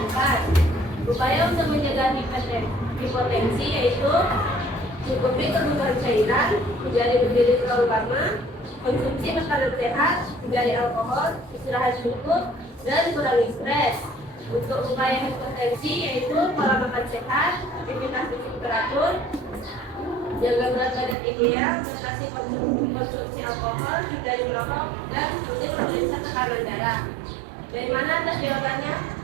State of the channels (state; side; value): drops out; left; at 21.2 s